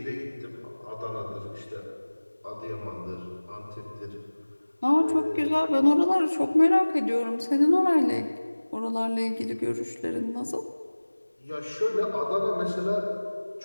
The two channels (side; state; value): both; inverted; correlation -1.00